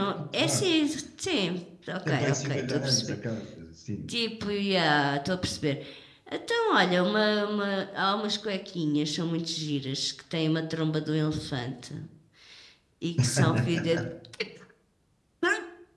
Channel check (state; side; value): identical; both; correlation 1.00